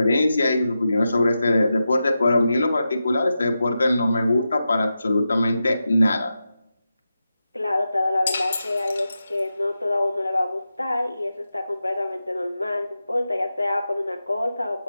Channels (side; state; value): both; inverted; correlation -0.90